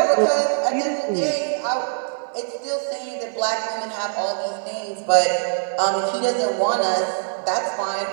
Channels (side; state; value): left; silent; 56 dB below the other